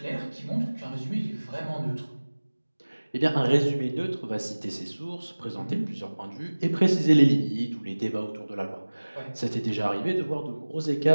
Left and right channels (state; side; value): inverted; both; correlation -1.00